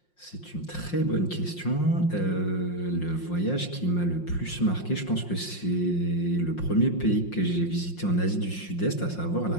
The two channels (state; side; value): late; right; 5.6 ms